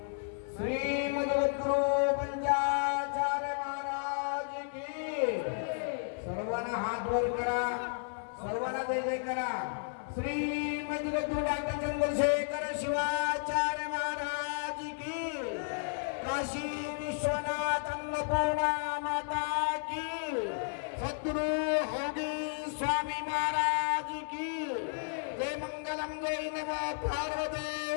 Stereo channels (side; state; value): right; silent; digital silence